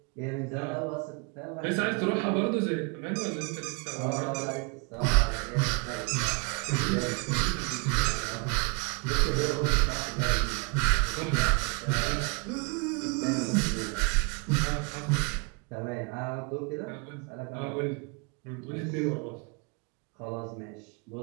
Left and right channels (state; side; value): quieter; left; 33.1 dB